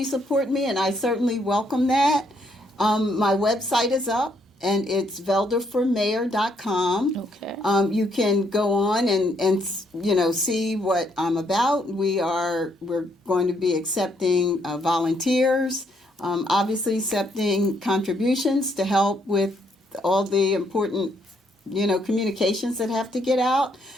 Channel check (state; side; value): normal; both; correlation 0.72